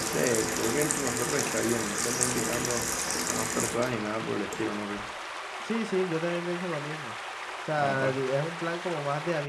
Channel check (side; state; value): both; identical; correlation 1.00